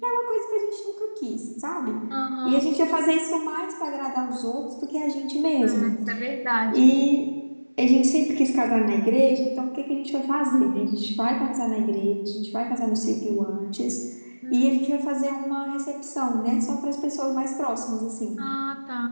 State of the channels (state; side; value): inverted; both; correlation -1.00